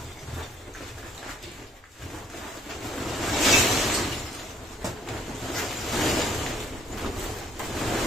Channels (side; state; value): both; normal; correlation 0.62